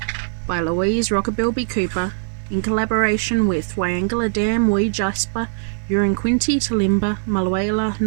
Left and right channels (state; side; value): silent; left; 65 dB below the other